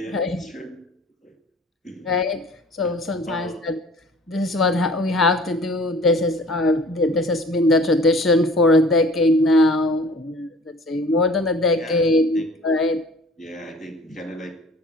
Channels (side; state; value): both; normal; correlation 0.48